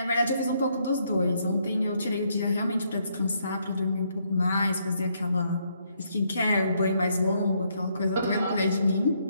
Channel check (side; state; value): both; inverted; correlation -0.73